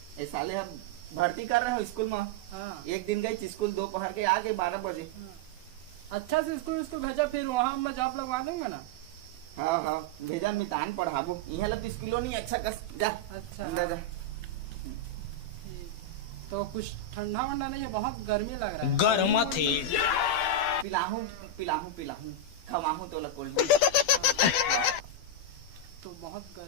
ए साले हम भर्ती कर रहे हो स्कूल में। हाँ। एक दिन गई स्कूल दोपहर के आ गए 12 बजे। अच्छा से स्कूल भेजा, फिर वहाँ मैं जॉब लगवा दूंगा ना। हाँ भेजा मितान पढ़ाबो यहाँ लग स्कूलों नहीं अच्छा कर जा। अच्छा अंदर जा। तो कुछ ठंडा वंडा नहीं है, बहुत गर्मी लग रहा है। गर्म थे पिलाहूं खवाहूं तो कोल्ड तो बहुत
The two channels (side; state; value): right; late; 12 ms